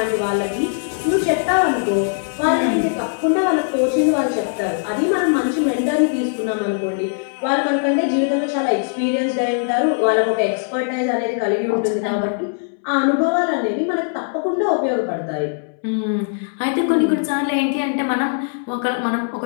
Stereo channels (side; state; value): right; silent; 66 dB below the other